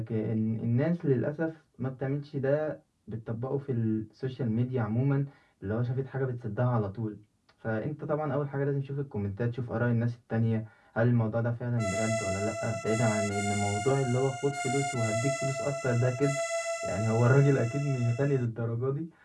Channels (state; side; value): identical; both; correlation 1.00